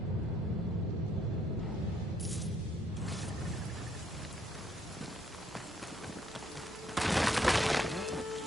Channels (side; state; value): both; normal; correlation 0.70